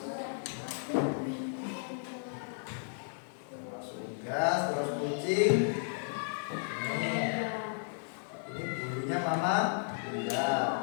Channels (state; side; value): silent; right; digital silence